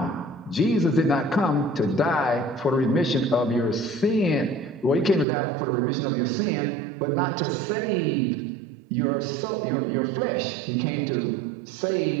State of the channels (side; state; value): left; drops out; at 5.2 s